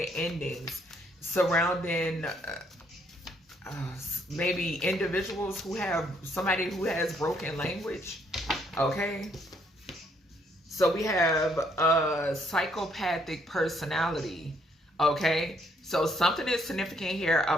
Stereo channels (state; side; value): normal; both; correlation 0.70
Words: endings surrounding maybe individuals who have somebody who has broken language. Okay. So we have a psychopathic personality, okay? So something is significant here